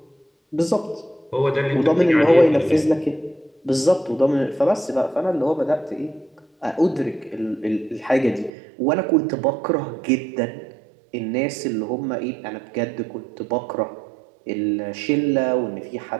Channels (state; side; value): drops out; left; at 8.5 s